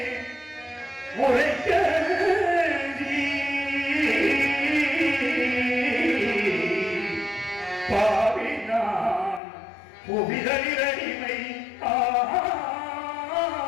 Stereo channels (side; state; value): right; drops out; at 9.4 s